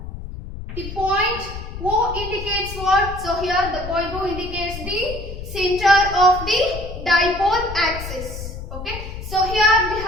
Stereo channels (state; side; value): noise; left; rumble, 9 dB below the sound